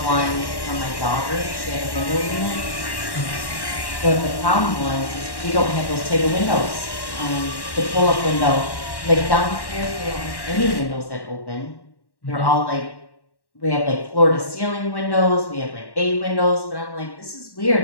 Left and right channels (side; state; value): right; late; 1.1 ms